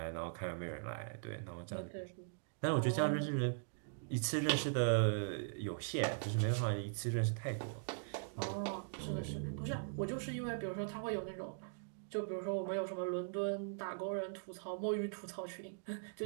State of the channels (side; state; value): left; silent; digital silence